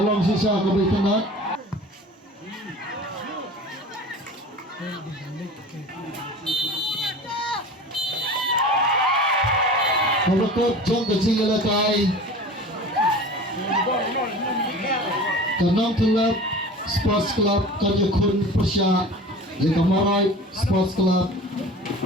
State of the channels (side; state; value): both; normal; correlation 0.38